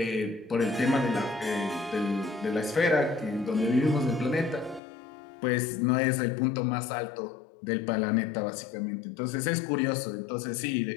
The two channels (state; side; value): drops out; right; at 4.8 s